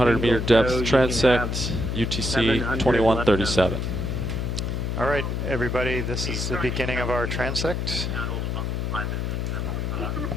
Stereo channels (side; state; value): left; noise; hum, 1 dB below the sound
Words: meter single depth tow, you can transect, have UTC 700 2137. All right, everybody, this is the beginning of our transect.